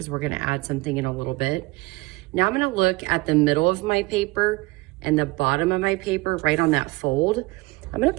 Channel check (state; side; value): quieter; left; 22.8 dB